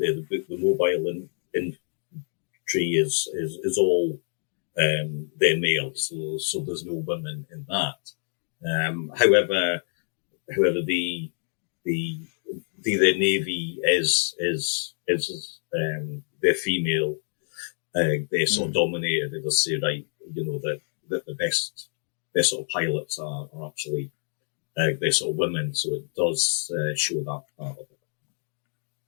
book, the mobile infantry is all they're male, so there's no women in that. However, the navy is they're female. They're sort of dominated. They say, right, you know, that the best sort of pilots are actually they're sort of women. So it does show that part of it.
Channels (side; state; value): right; silent; 56 dB below the other